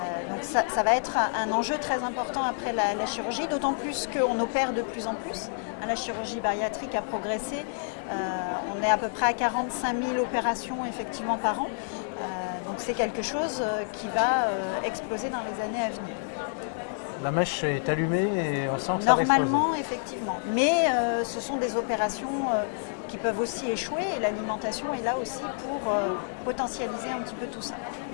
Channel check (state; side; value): silent; right; digital silence